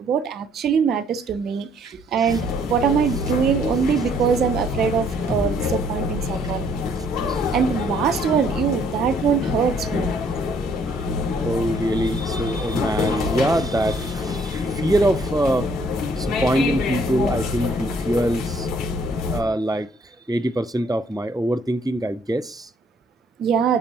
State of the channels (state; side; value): normal; both; correlation 0.64